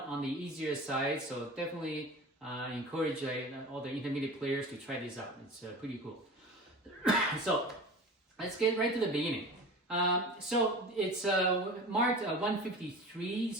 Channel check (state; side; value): normal; both; correlation 0.35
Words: on the easier side. So definitely encourage all the intermediate players to try this out. It's pretty cool. So let's get right to the beginning. So it's marked 153.